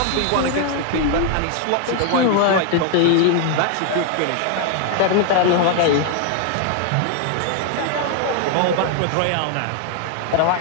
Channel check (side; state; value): both; different; correlation 0.00